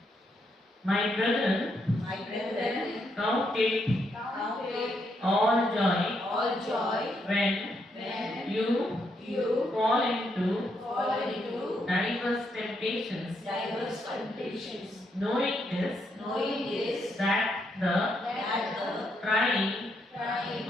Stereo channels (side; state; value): both; normal; correlation 0.78